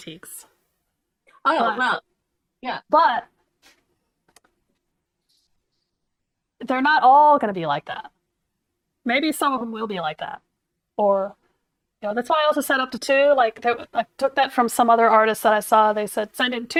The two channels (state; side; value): identical; both; correlation 1.00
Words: Well, yeah. But they're not all going to be like that. Maybe some of them will be like that. Or, that's why I also set up to 2. I took that from some other artists that I saw. They said, send in